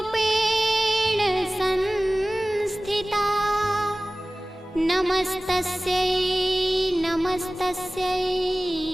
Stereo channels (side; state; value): both; normal; correlation 0.98